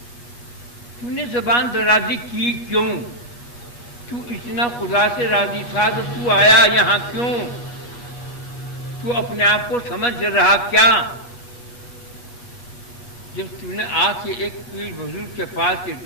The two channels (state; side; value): late; right; 8.3 ms